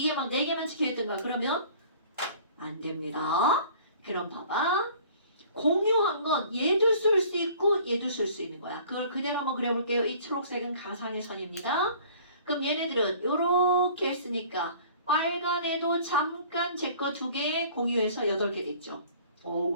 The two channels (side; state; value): both; inverted; correlation -0.50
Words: 막 4개만 찍혀 있던가 그러면 안 됩니다. 그럼 봐봐. 공유한 건 얘도 쓸 수 있고 얘도 쓸 수 있는 거야. 그걸 그대로 한번 그려볼게요. 이 초록색은 가상의 선입니다. 그럼 얘네들은 이렇게 했으니까 빨간 애도 잠깐 제 거 2개 공유해서 8개 됐죠.